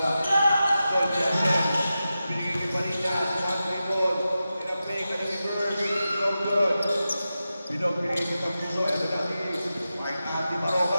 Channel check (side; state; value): both; inverted; correlation -0.92